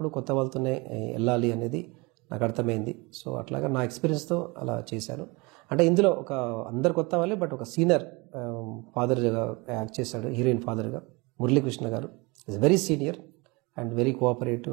కొత్త వాళ్ళతోనే వెళ్ళాలి అనేది నాకు అర్థమైంది. సో అట్లాగా నా ఎక్స్పీరియన్స్తో అలా చేశాను. అంటే ఇందులో అందరు కొత్త వాళ్ళే, బట్ ఒక సీనియర్ ఫాదర్గా యాక్ట్ చేశాడు, హీరోయిన్ ఫాదర్గా మురళీకృష్ణ గారు. Is very senior and very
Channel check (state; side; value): quieter; left; 26.5 dB